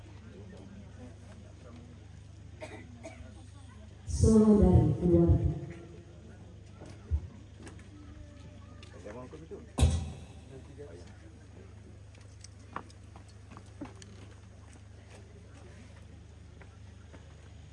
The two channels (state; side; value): identical; both; correlation 1.00